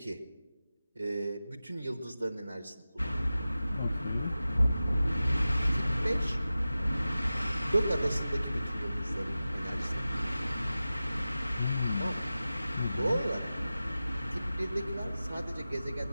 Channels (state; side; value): inverted; both; correlation -0.95